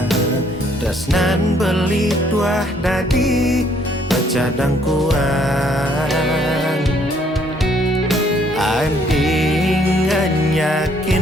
tresnan beli tuah dadi bercadang kuang. Andingan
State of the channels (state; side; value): normal; both; correlation 0.66